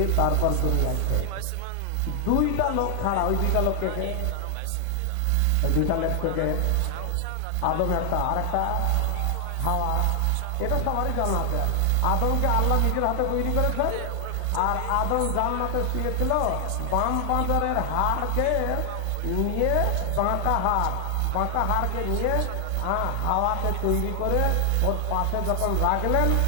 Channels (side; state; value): both; different; correlation 0.00